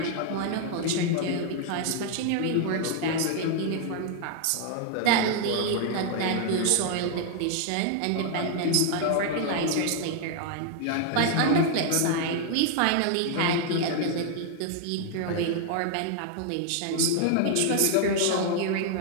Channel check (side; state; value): both; different; correlation 0.00